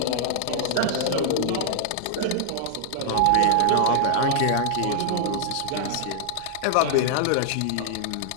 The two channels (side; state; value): both; different; correlation -0.01